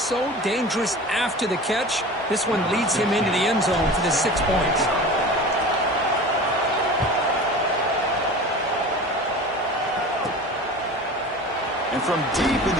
dangerous after the catch. This one leads him into the end zone for the 6 points. And from deep in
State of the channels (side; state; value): both; normal; correlation 0.36